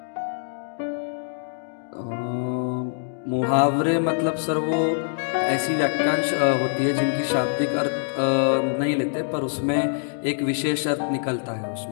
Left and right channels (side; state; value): right; silent; digital silence